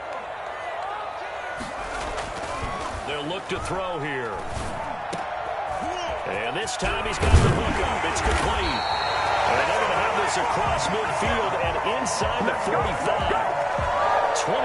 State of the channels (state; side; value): identical; both; correlation 1.00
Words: They'll look to throw here. And this time he's got the hook up. It's complete. And they're going to have this across midfield and inside the 45.